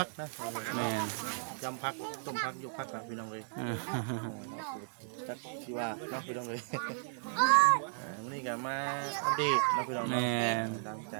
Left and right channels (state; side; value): silent; left; digital silence